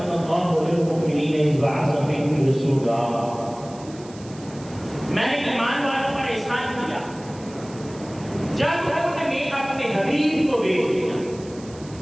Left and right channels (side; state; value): right; noise; hiss, 21 dB below the sound